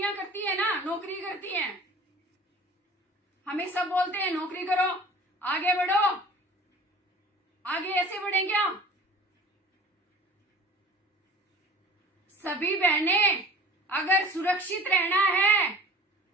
करती है ना, नौकरी करती हैं, हमें सब बोलते हैं नौकरी करो, आगे बढ़ो, आगे ऐसे बढ़े क्या? सभी बहनें अगर सुरक्षित रहना है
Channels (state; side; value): normal; both; correlation 0.44